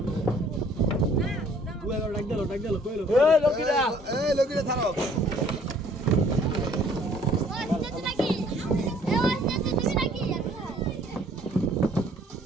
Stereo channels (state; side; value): normal; both; correlation 0.58